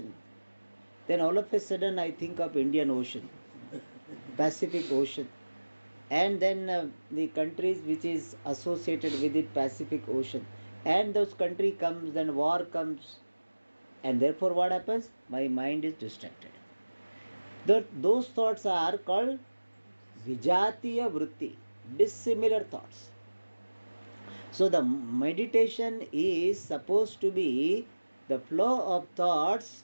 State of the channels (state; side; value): inverted; both; correlation -1.00